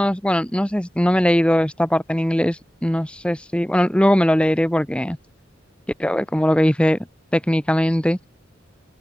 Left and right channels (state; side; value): normal; both; correlation 0.97